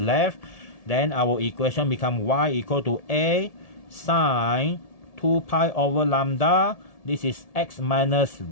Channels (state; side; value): late; right; 1.7 ms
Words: then our equation become y equal to a sine 2 pi over lambda. This is x minus